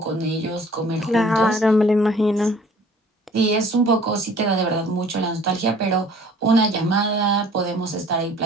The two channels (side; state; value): both; normal; correlation 0.52